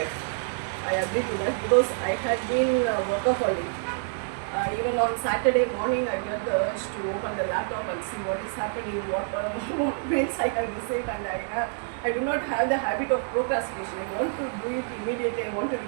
I agree to that, because I had been workaholic. Even on Saturday morning, I get the urge to open the laptop and see what is happening, what mails I have received, and I do not have the habit of procrastination. I want to do it immediately. I want to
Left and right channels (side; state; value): left; silent; 57 dB below the other